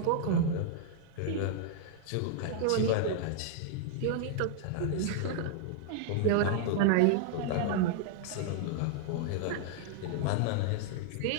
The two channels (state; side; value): different; both; correlation 0.00